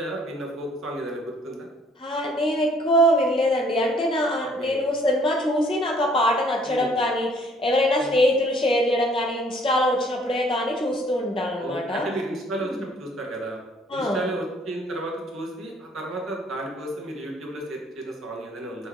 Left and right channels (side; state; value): both; normal; correlation 0.60